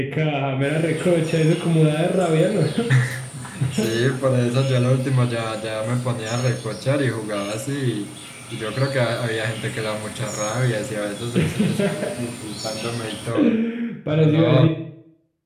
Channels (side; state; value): both; identical; correlation 1.00